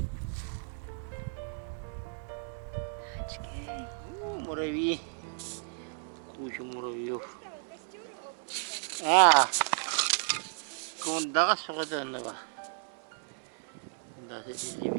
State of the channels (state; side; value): silent; left; digital silence